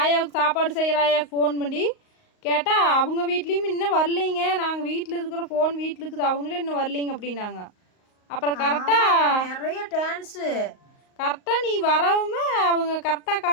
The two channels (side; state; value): right; late; 38 ms